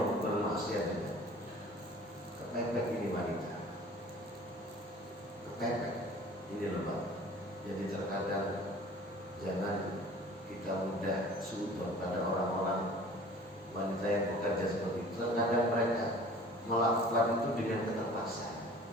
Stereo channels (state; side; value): normal; both; correlation 0.47